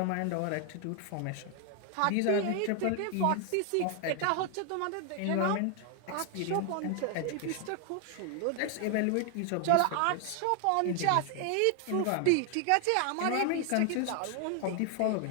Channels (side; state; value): both; different; correlation 0.00